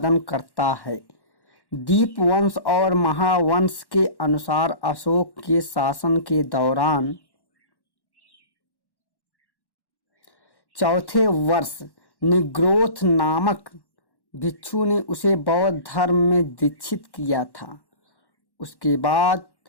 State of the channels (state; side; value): late; right; 1.1 ms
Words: करता है। दीपवंश और महावंश के अनुसार अशोक के शासन के दौरान चौथे वर्ष निग्रोथ नामक भिक्षु ने उसे बौद्ध धर्म में दीक्षित किया था। उसके बाद